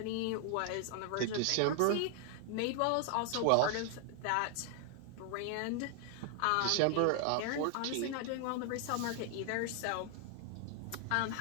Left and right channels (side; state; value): both; different; correlation 0.00